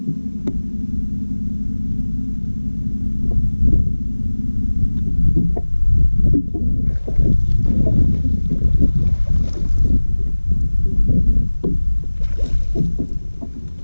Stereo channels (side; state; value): both; inverted; correlation -1.00